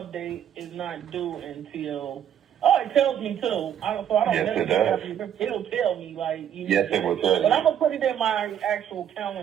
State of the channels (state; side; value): quieter; left; 9.6 dB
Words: is not due until. Oh, it tells me too. So I don't. Yes, it does. It'll tell me Yes, it will tell you. But I'm gonna put it in my actual